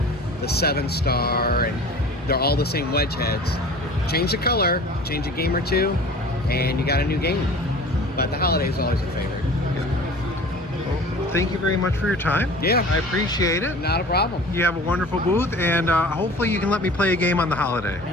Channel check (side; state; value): both; normal; correlation 0.42